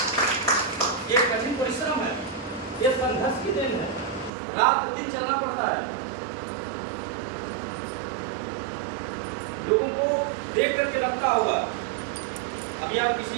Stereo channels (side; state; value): left; drops out; at 4.3 s